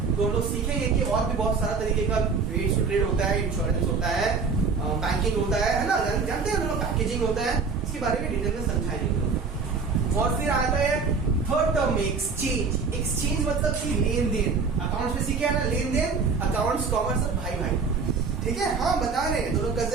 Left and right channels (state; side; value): quieter; left; 4.9 dB